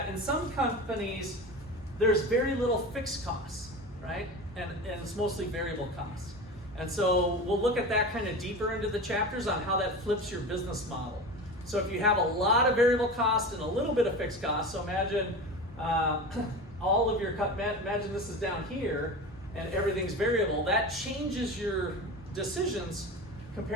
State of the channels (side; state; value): both; normal; correlation 0.29